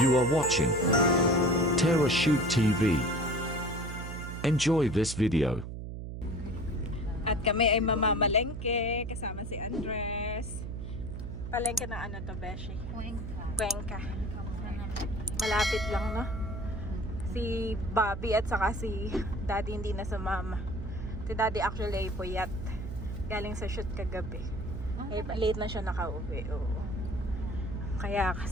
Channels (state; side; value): noise; right; hum, 7 dB below the sound